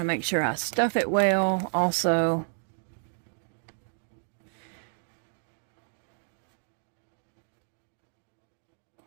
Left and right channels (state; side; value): silent; left; digital silence